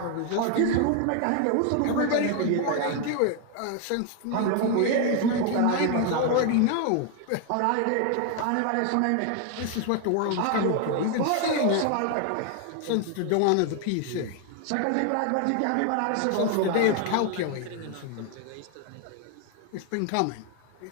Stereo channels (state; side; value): different; both; correlation 0.00